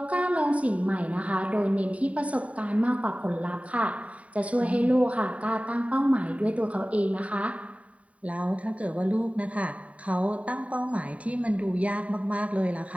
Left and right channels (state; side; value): late; left; 0.067 ms